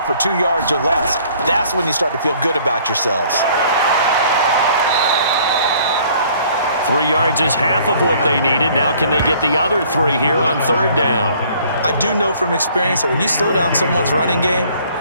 2 yards or less. That's when you start to feel good about yourselves. 3 yards is half of what they needed. Now can they get the other 3 here on 3rd down? I do know from experience that when you slow down someone's running game,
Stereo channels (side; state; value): both; inverted; correlation -0.57